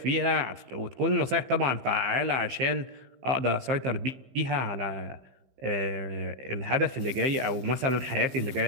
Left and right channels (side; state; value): left; late; 15 ms